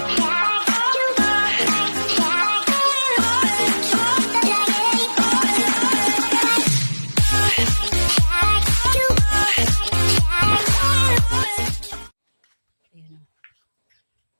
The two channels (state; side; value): inverted; both; correlation -1.00